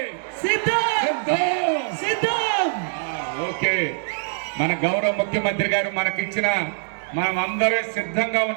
సిద్ధం. ఓకే, మన గౌరవ ముఖ్యమంత్రి గారు మనకిచ్చిన, మనం అందరూ సిద్ధంగా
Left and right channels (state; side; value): silent; left; 63 dB below the other